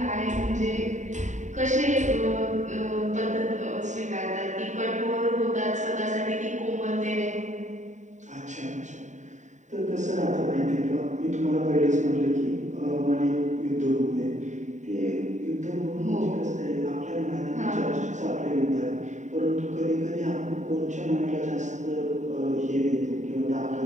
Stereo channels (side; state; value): left; late; 0.35 ms